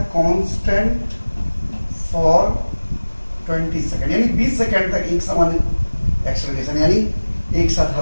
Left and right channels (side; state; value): both; inverted; correlation -1.00